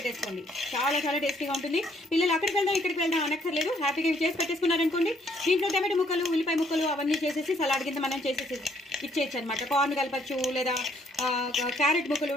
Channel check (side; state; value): both; normal; correlation 0.67